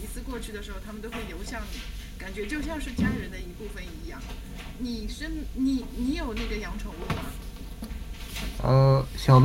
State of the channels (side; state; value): both; identical; correlation 1.00